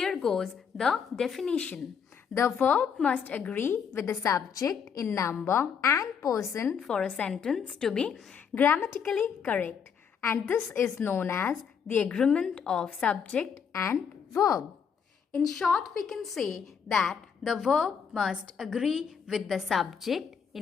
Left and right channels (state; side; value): quieter; right; 6.9 dB